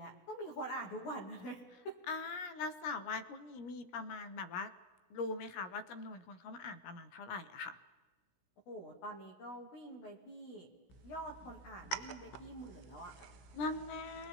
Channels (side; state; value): right; late; 16 ms